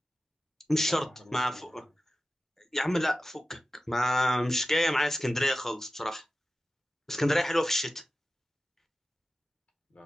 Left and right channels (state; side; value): normal; both; correlation 0.94